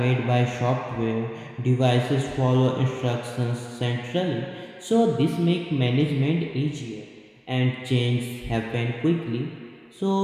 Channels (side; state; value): both; identical; correlation 1.00